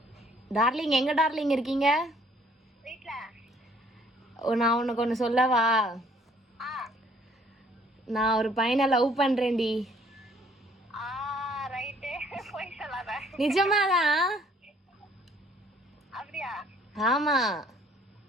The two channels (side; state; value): both; normal; correlation 0.60